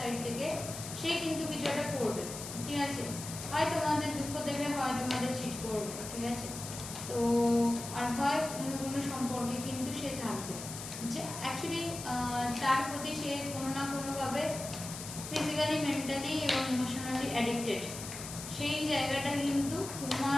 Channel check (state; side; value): noise; left; hiss, 9 dB below the sound